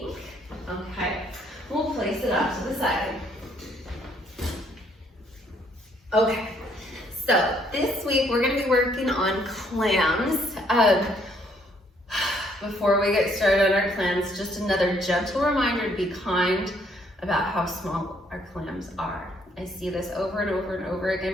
Okay, we'll place it off to the side. Okay, so this week we're going to be working on clams. Before we get started on our clams, just another gentle reminder to be kind about how small our clams are. I see this over and over and over again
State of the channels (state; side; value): normal; both; correlation 0.67